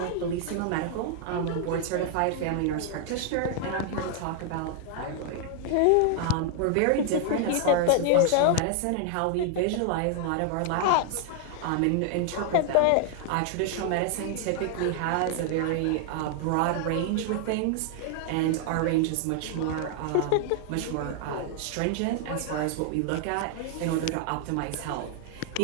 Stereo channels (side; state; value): both; different; correlation 0.00